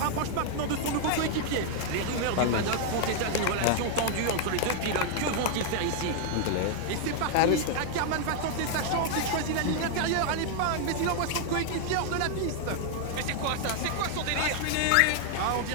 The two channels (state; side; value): different; both; correlation 0.00